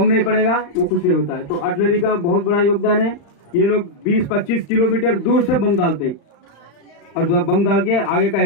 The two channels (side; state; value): right; late; 35 ms